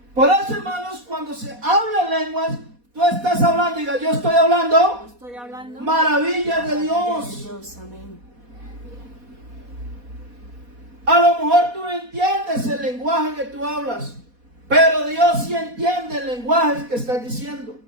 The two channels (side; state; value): left; late; 4.1 ms